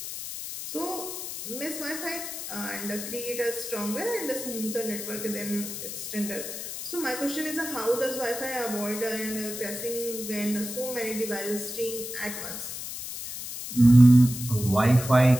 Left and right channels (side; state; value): left; noise; hiss, 8 dB below the sound